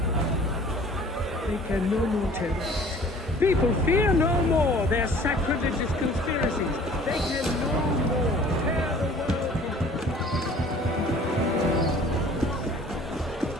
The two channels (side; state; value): both; normal; correlation 0.50